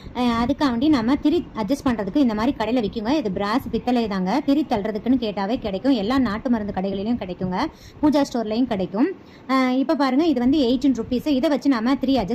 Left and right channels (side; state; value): both; identical; correlation 1.00